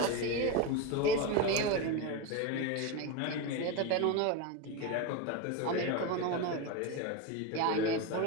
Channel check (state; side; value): different; both; correlation 0.04